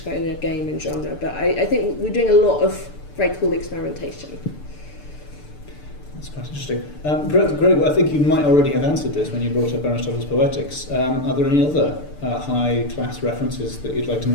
kind of game and genre. But I think we're doing a lot of very cool experimentation. That's quite interesting. Greg, I think you might already have answered this when you brought up Aristotle's Poetics. Are there any other high-class references that you'd like to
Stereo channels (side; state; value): right; late; 6.8 ms